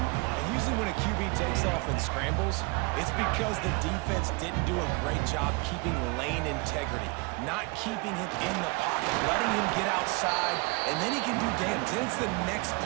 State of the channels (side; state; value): left; quieter; 28.5 dB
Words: Usually when a QB takes off and scrambles, it's because the defense didn't do a great job keeping lane integrity, not keeping him in the pocket, letting him get outside, and then he can do damage. Then it's the next